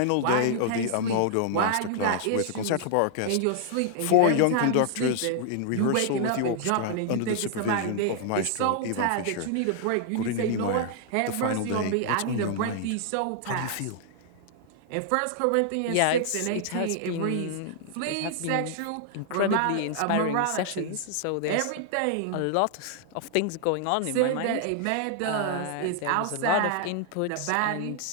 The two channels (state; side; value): different; both; correlation -0.01